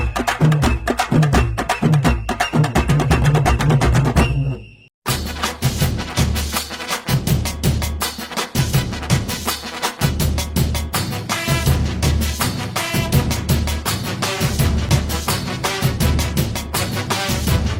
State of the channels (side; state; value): both; identical; correlation 1.00